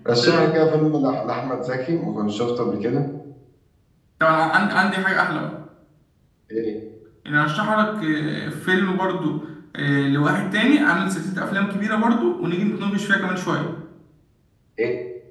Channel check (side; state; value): both; identical; correlation 1.00